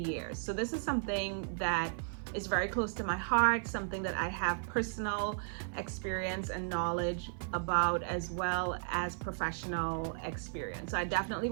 So this is something that is very close to my heart, something that I have personal experience and knowledge about, as well as professional experience. So I definitely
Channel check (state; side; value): silent; left; 54 dB below the other